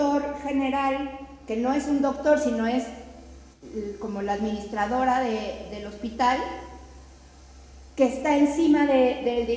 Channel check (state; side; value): identical; both; correlation 1.00